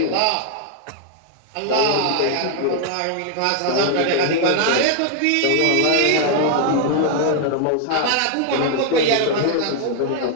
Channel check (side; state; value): both; different; correlation 0.00